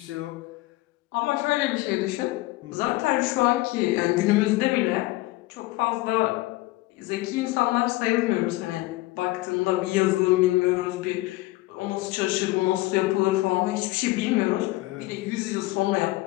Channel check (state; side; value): quieter; right; 19.3 dB